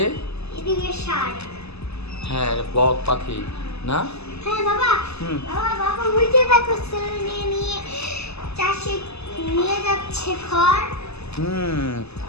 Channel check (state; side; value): late; right; 0.79 ms